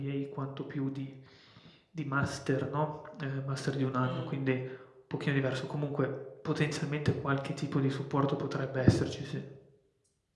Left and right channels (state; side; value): identical; both; correlation 1.00